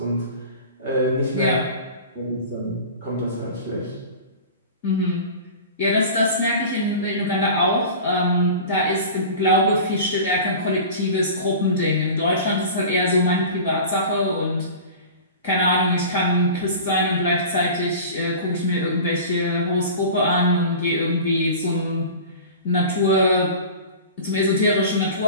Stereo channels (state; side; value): inverted; both; correlation -0.37